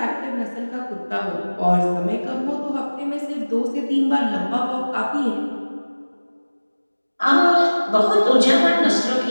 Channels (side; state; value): both; inverted; correlation -1.00